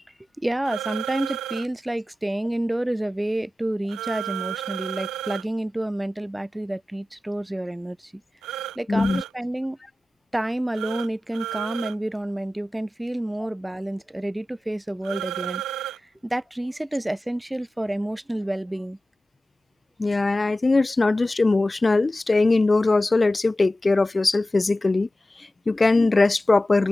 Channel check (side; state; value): both; normal; correlation 0.95